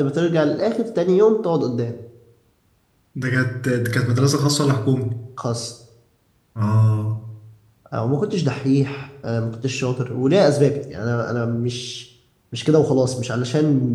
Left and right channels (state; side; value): identical; both; correlation 1.00